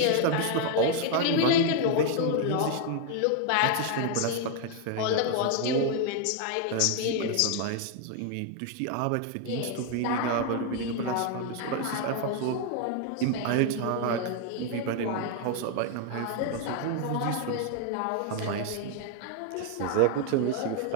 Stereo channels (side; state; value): both; different; correlation 0.00